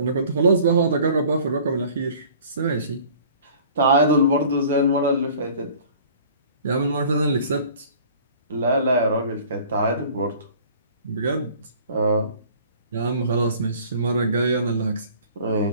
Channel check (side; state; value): both; inverted; correlation -0.49